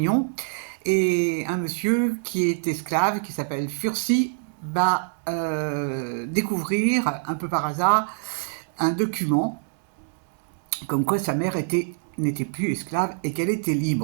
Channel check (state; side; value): silent; left; digital silence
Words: Et un monsieur qui est esclave, qui s'appelle Fursi, va découvrir, un peu par hasard, un document comme quoi sa mère n'était plus esclave et qu'elle était